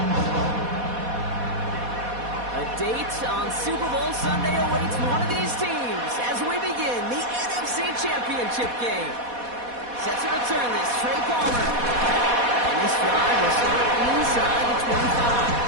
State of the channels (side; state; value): left; late; 4.1 ms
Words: Date on Super Bowl Sunday awaits one of these teams as we begin the NFC Championship game. Set to return this, Trey Palmer. And this drive will start inside the 25.